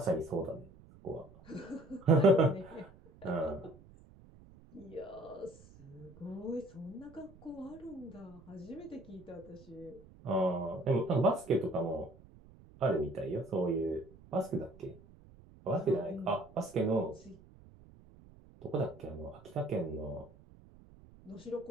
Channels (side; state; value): right; noise; rumble, 22 dB below the sound